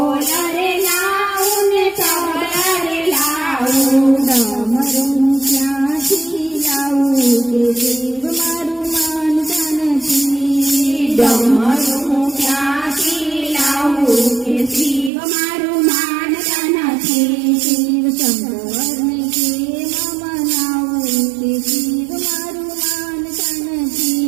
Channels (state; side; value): drops out; left; at 15.1 s